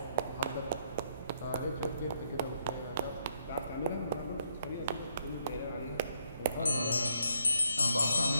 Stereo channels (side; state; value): both; inverted; correlation -0.73